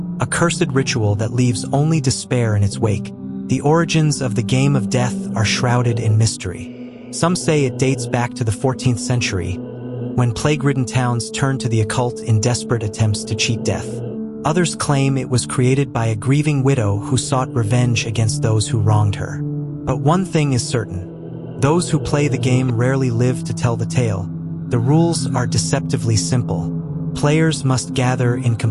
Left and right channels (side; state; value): both; identical; correlation 1.00